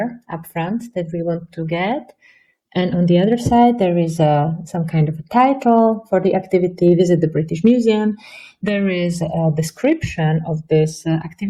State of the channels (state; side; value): identical; both; correlation 1.00